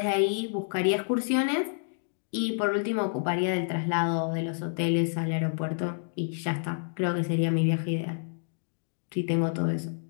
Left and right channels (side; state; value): right; silent; digital silence